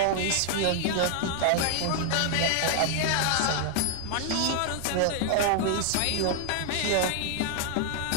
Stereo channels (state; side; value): different; both; correlation 0.00